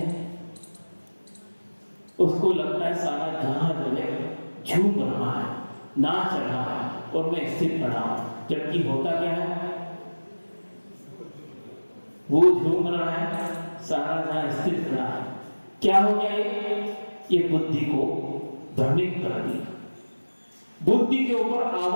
उसको लगता है सारा जहां जो है झूम रहा है, नाच रहा है और मैं स्थिर खड़ा हूं, जबकि होता क्या है? वो झूम रहा है, सारा जहां स्थिर खड़ा है। क्या हो गया? ये बुद्धि को भ्रमित कर दिया, बुद्धि के ऊपर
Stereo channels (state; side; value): inverted; both; correlation -1.00